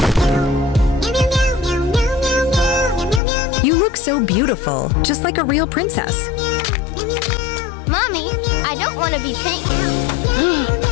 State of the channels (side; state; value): right; drops out; at 3.2 s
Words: You look so beautiful, just like a real princess. Mommy, I don't want to be pink.